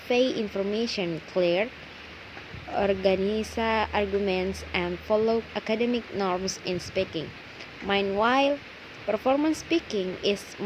information clear, organize arguments, and follow academic norms in speaking. Meanwhile, performance speaking is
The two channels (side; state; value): both; identical; correlation 1.00